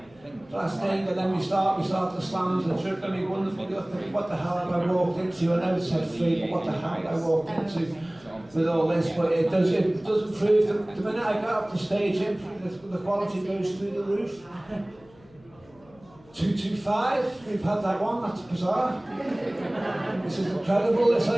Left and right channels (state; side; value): noise; left; hum, 27 dB below the sound